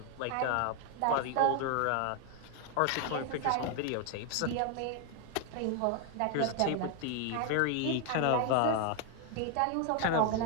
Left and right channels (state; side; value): different; both; correlation 0.00